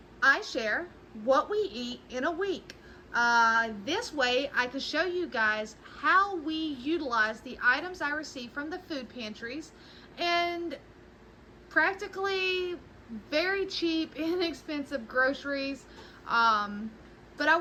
I share what we eat in a week. This way I can show you guys how we utilize the items I receive from the food pantries, and practically very cheap, inexpensive groceries. But I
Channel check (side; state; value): both; identical; correlation 1.00